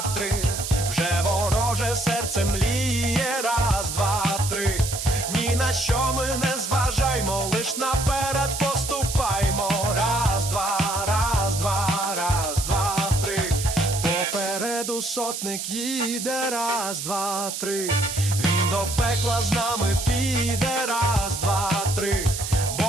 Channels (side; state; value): right; noise; hiss, 5 dB below the sound